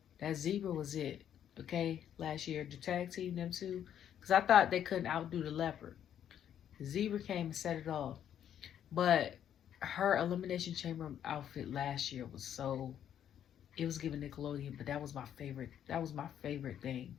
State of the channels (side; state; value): right; quieter; 9.9 dB